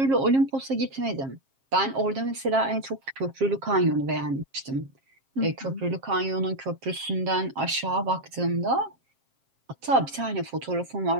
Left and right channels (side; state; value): left; late; 7.5 ms